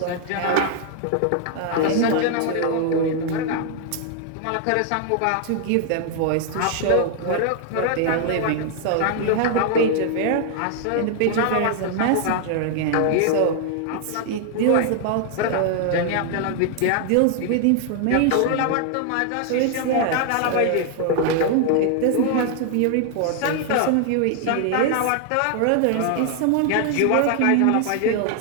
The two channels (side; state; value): both; different; correlation 0.00